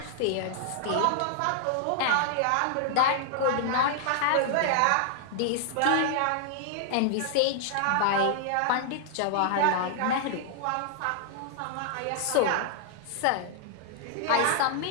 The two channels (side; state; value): both; different; correlation -0.01